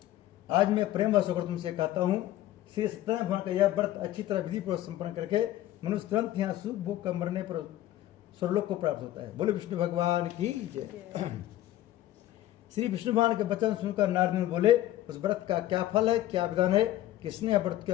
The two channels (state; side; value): quieter; right; 14.1 dB